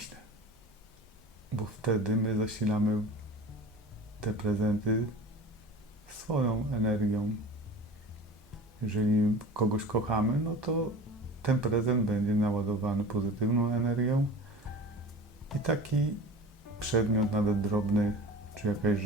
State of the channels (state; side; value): normal; both; correlation 0.37